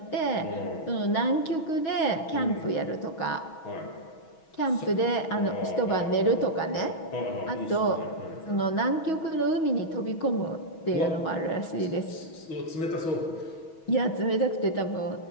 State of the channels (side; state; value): right; late; 6.2 ms